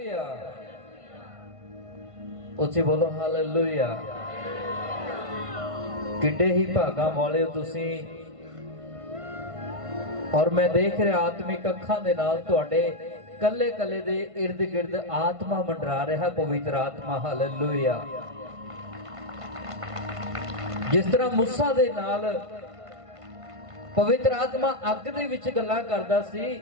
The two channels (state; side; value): late; left; 1.5 ms